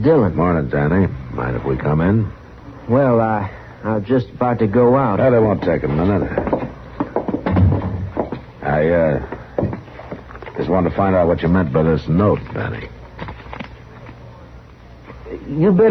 Morning, Danny. Mind if we come in? Well, I was just about to go out. That won't take a minute. I just wanted to find out what you meant by this note, Danny. You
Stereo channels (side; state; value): both; identical; correlation 1.00